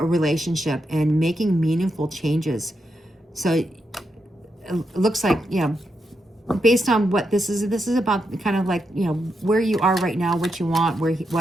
and making meaningful changes. So it looks like, based on what this is about, kind of like, where you are right now, what you want,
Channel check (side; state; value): both; normal; correlation 0.84